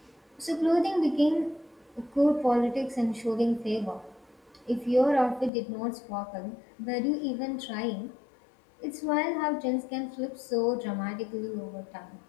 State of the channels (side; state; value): right; drops out; at 5.5 s